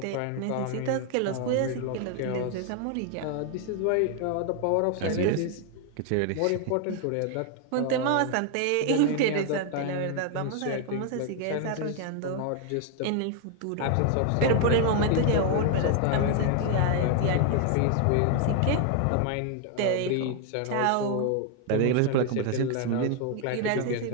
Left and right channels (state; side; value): different; both; correlation 0.00